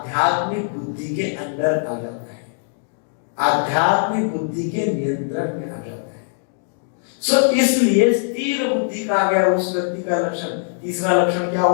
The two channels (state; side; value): silent; right; digital silence